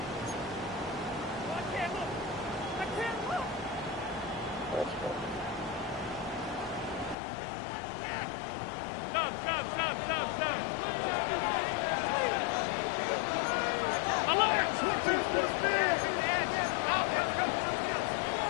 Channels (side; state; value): right; drops out; at 7.2 s